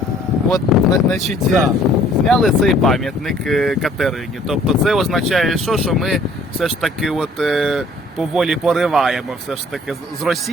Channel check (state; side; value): normal; both; correlation 0.57